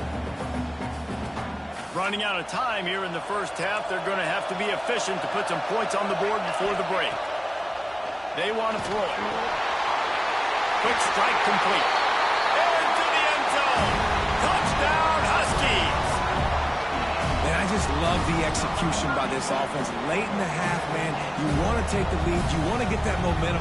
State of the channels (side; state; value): both; identical; correlation 1.00